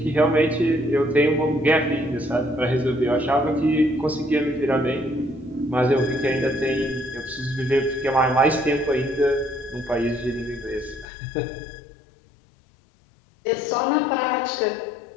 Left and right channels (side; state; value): right; drops out; at 11.1 s